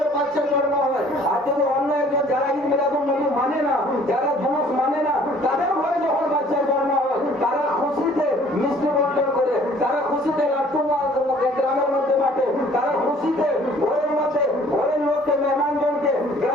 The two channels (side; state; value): both; normal; correlation 0.55